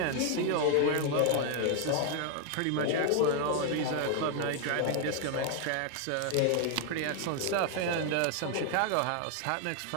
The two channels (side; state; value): both; different; correlation 0.00